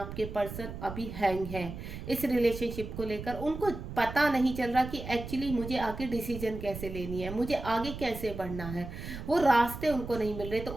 पर्सन अभी हैंग है इस रिलेशनशिप को लेकर। उनको पता नहीं चल रहा कि एक्चुअली मुझे आगे डिसीजन कैसे लेनी है, मुझे आगे कैसे बढ़ना है, वो रास्ते उनको नहीं मिल रहे। तो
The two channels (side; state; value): right; noise; rumble, 9 dB below the sound